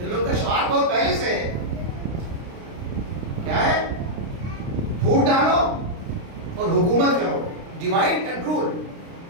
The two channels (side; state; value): left; late; 29 ms